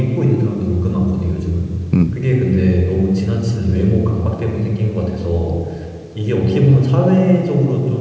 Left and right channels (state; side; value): identical; both; correlation 1.00